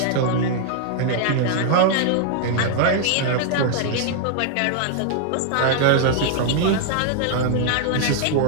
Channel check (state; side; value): different; both; correlation 0.00